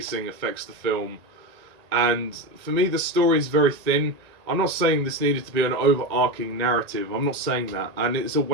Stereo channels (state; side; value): late; left; 1.9 ms